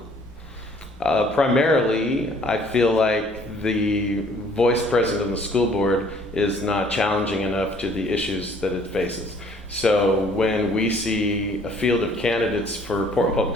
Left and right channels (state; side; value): normal; both; correlation 0.58